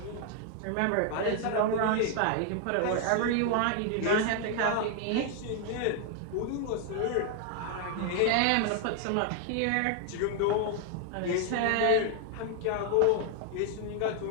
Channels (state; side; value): different; both; correlation 0.00